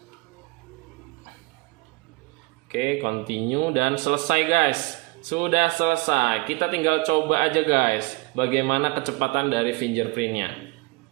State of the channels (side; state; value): left; quieter; 26.2 dB